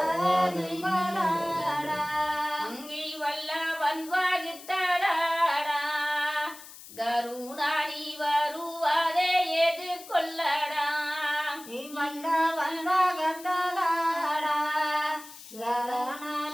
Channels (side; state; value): left; noise; hiss, 17 dB below the sound